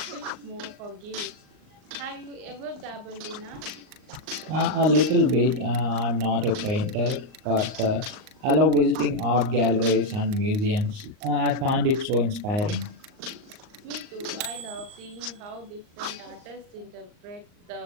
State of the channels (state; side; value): late; left; 39 ms